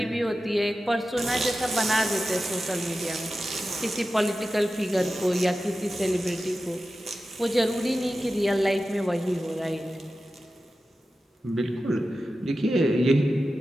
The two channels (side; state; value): both; normal; correlation 0.93